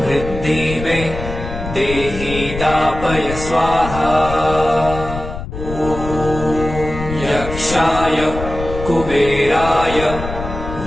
मे देहि दापय स्वाहा। यक्षाय कुबेराय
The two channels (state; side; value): noise; left; rumble, 8 dB below the sound